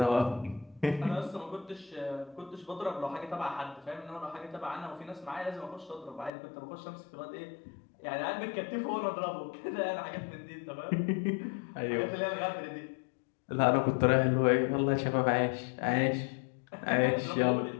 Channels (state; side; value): drops out; right; at 6.3 s